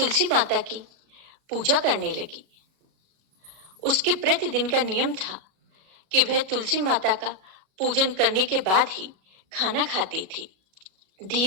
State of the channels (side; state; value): left; late; 37 ms